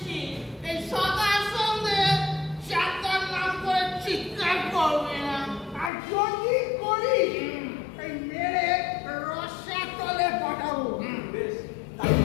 এই সকাল সন্ধে চারটার নাম করে চিৎকার করবে না। আর যদি করি এই মেরে রসা তলে পাঠাবো। বেশ,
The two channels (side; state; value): right; drops out; at 5.9 s